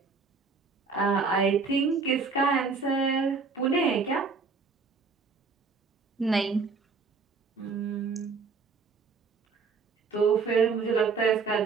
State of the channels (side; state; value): left; quieter; 4.8 dB